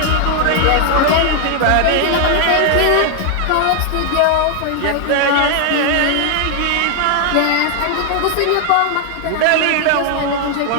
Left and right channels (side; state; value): both; different; correlation 0.00